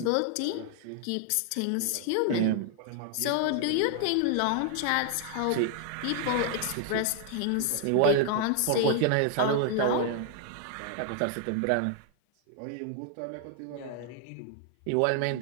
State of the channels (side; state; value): both; different; correlation 0.00